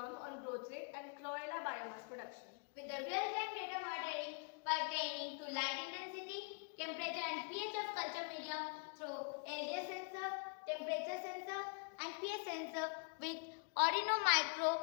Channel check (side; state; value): right; quieter; 39.0 dB